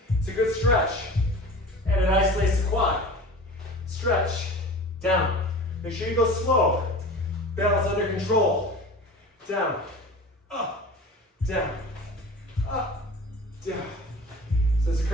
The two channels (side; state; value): both; normal; correlation 0.37